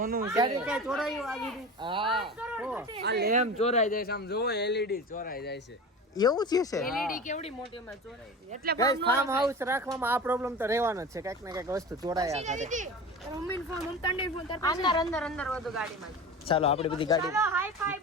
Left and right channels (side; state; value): both; normal; correlation 0.32